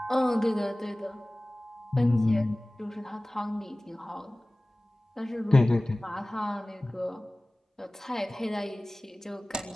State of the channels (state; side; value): normal; both; correlation 0.98